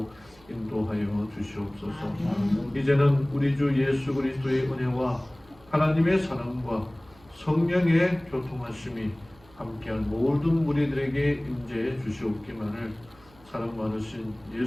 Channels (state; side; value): noise; right; hum, 27 dB below the sound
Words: 인도하여 주시옵소서. 이제는 우리 주 예수 그리스도의 은혜와 하나님의 사랑과 성령의 교통하심이 함께한 모든 무리들에게 임재해 주시옵기만을 사랑 많으신